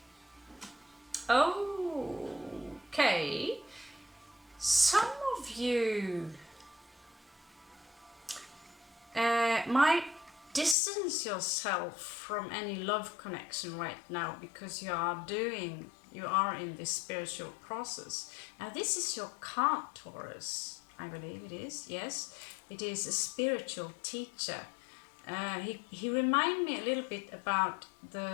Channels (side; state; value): right; drops out; at 10.8 s